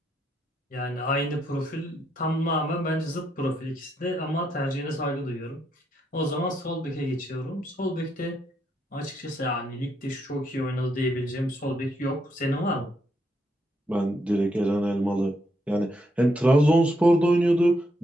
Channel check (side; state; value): both; normal; correlation 0.78